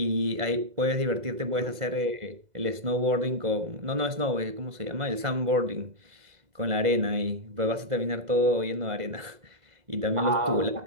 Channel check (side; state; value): left; late; 2.0 ms